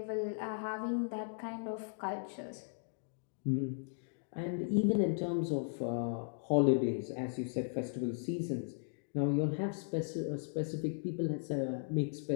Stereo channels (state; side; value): silent; right; digital silence